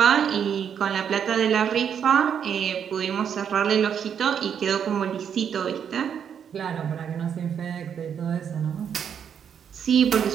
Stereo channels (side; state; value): left; quieter; 8.0 dB